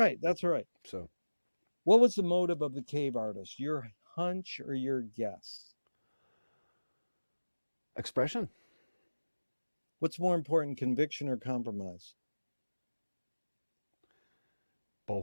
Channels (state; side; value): inverted; both; correlation -1.00